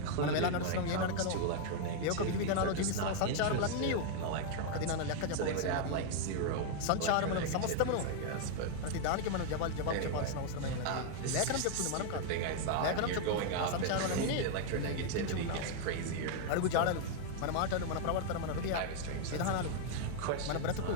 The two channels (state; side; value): different; both; correlation 0.00